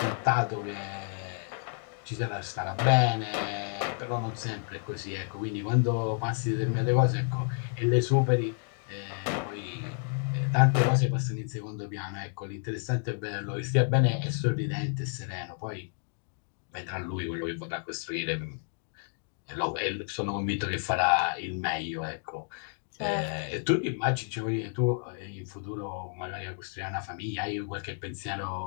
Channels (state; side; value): silent; right; 56 dB below the other